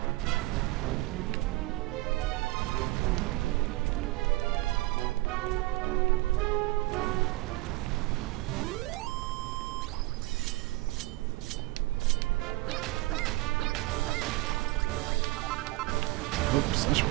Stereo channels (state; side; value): quieter; left; 20.5 dB